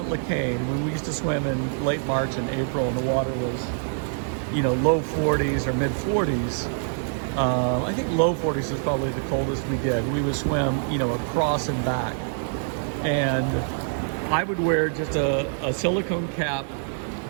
Lecain, when we used to swim in late March and April and the water was, low 40s or mid 40s, I think low 40s was probably the coldest we did. We would swim, across and back. And I would wear just a silicone cap,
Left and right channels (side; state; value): left; silent; 55 dB below the other